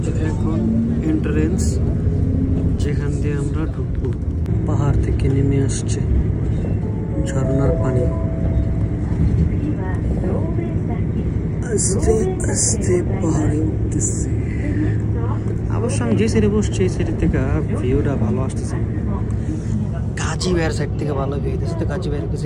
যে এখন এন্ট্রান্স, যেখান দিয়ে আমরা ঢুকবো। পাহাড় থেকে নেমে আসছে ঝর্ণার পানি, আস্তে আস্তে পাহাড়ে উঠতেছে। অবশ্য আমি যে সাইডে বসছি এই সাইড থেকে ভিউটা ভালো আসতেছে। কাজী ভাইয়ের সাইড থেকে ভালো ভিউ দিচ্ছে, তো কাজী ভাইয়ের কাছে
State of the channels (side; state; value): both; identical; correlation 1.00